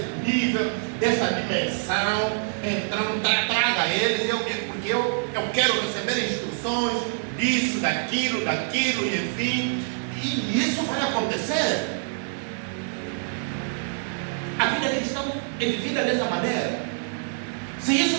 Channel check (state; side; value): silent; left; digital silence